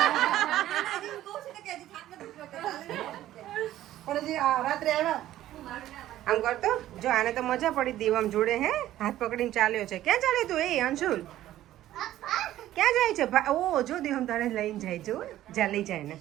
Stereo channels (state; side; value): quieter; left; 13.6 dB